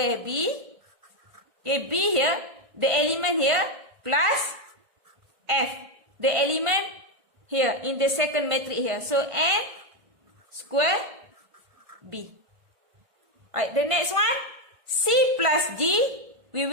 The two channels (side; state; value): left; late; 1.5 ms